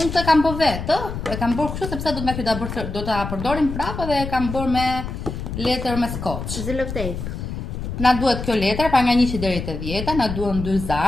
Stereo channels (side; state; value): left; noise; rumble, 6 dB below the sound